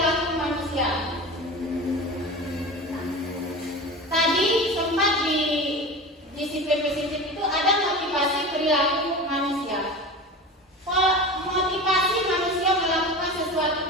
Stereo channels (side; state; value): both; normal; correlation 0.31